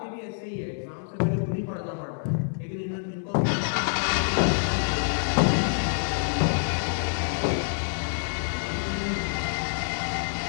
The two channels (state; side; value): silent; right; digital silence